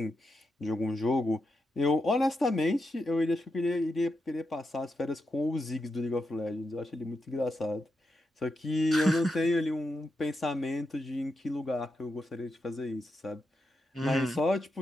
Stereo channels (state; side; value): normal; both; correlation 0.86